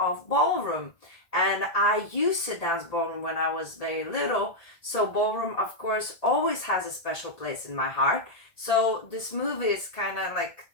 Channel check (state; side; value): late; right; 1.8 ms